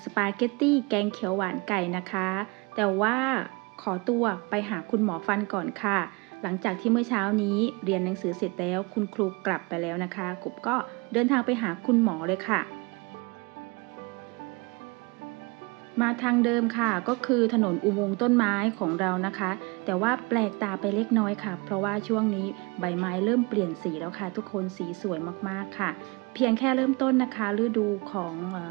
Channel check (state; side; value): quieter; left; 28.1 dB